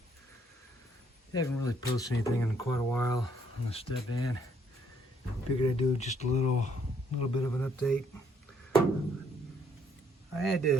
I haven't really posted anything in quite a while on the Stepvan. Figured I'd do just a little bit of an update. I had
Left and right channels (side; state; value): both; normal; correlation 0.68